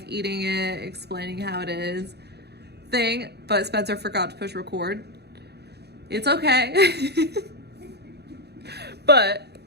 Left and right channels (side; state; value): left; late; 0.48 ms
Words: eating it, explaining how it is thing, but Spencer forgot to push record. It's okay. But